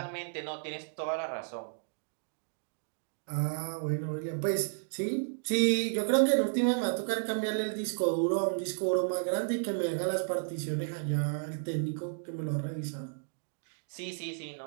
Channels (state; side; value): silent; left; digital silence